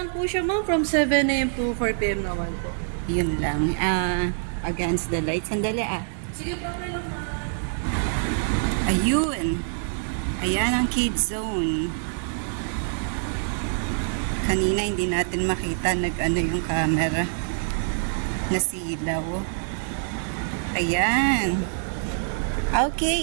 po siya, ma'am, from 7 a.m. to 4 p.m. naman po. Yun lang. Against the light. Sandali Sige po, okay lang, ma'am. Ayun. Ayan ang kids zone. Kanina hindi natin makita nag-ano yung camera. Nasilaw. Ayan.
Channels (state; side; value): silent; left; digital silence